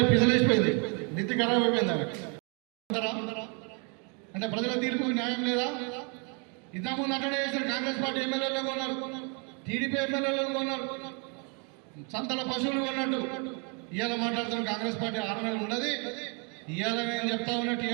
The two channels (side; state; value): left; quieter; 35.6 dB